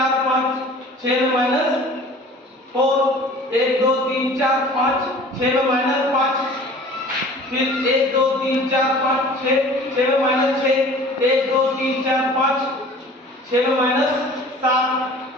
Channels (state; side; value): normal; both; correlation 0.45